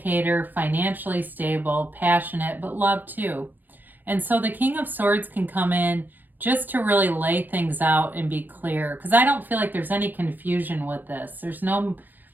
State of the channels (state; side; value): late; left; 0.087 ms